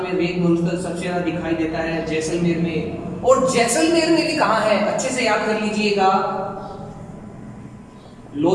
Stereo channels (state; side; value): identical; both; correlation 1.00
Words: में रेत मरुस्थल सबसे ज्यादा दिखाई देता है जैसलमेर में। और जैसलमेर में भी कहां है? अच्छे से याद कर लीजिएगा,